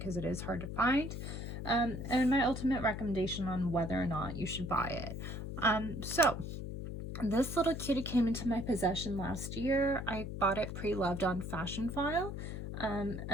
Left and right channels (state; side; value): noise; left; hum, 6 dB below the sound